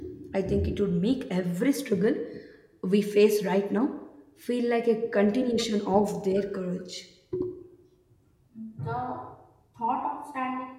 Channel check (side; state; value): both; identical; correlation 1.00